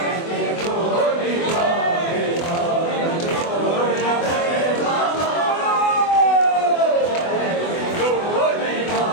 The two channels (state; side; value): late; right; 24 ms